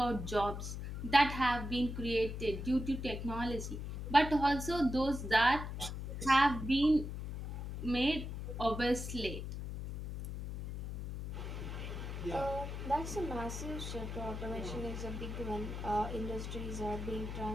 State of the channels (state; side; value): noise; left; hum, 6 dB below the sound